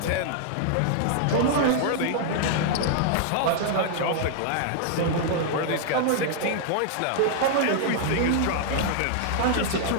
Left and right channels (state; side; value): different; both; correlation -0.01